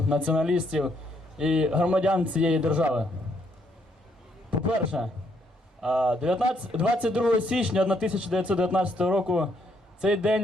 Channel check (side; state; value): both; normal; correlation 0.72